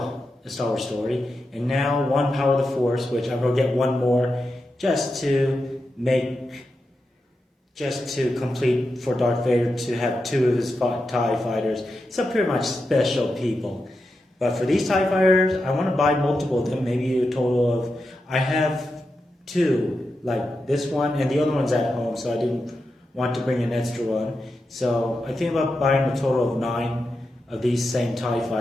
A Star Wars Story, and now 1 Power of the Force, which I'm going to get 1 more just to complete for Darth Vader to have 2 of his TIE Fighters. So pretty much special people. But for these TIE Fighters, I want to buy multiple of them, maybe a total of, I have 2. Like this one, and the other one's at home, so I didn't want to bring an extra one. So I think about buying a total of 9 of these same TIE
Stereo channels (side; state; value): both; normal; correlation 0.89